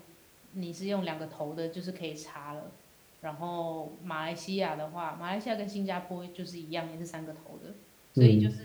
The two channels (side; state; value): both; identical; correlation 1.00